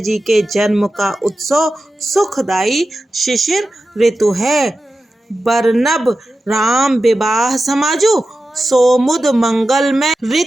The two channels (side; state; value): both; normal; correlation 0.92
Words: के जन्म का उत्सव सुखदायी शिशिर ऋतु है। बरनब राम विवाह समाजु, सोमुद मंगल में